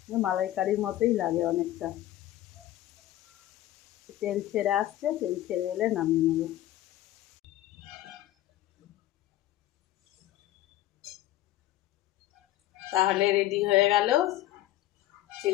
মালাইকারির মতোই লাগে অনেকটা। তেল ছেড়ে আসছে, তেল ছেড়ে এলে নামিয়ে নেব। তাহলে রেডি হয়ে গেল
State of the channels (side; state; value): right; quieter; 14.4 dB